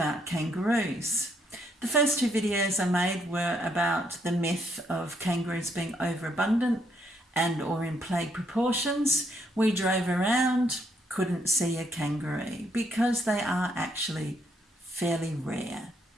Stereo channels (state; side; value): normal; both; correlation 0.73